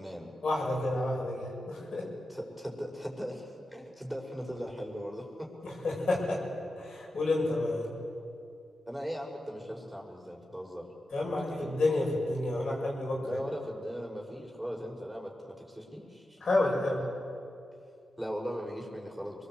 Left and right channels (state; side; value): normal; both; correlation 0.91